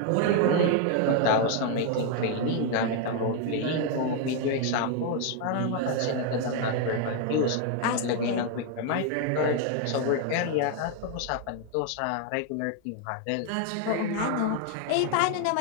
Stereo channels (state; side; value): different; both; correlation 0.00